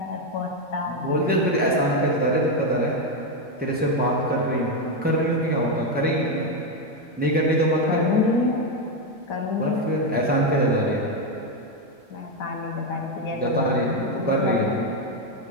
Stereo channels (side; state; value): both; normal; correlation 0.06